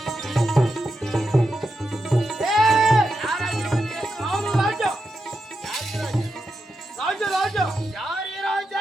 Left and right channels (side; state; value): both; normal; correlation 0.87